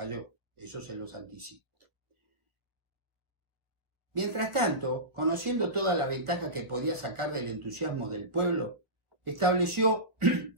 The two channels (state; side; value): late; left; 1.8 ms